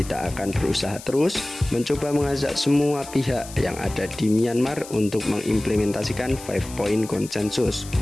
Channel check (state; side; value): noise; left; hiss, 15 dB below the sound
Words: akan berusaha terus mencoba mengajak semua pihak yang ada di Myanmar untuk mengimplementasikan 5 point konsensus,